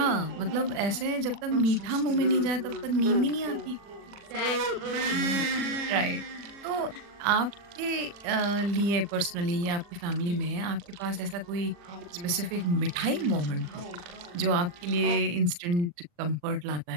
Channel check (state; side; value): late; left; 40 ms